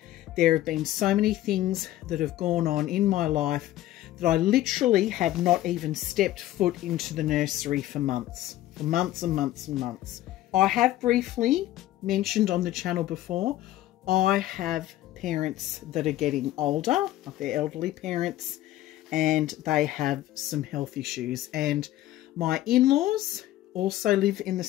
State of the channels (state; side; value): quieter; right; 14.5 dB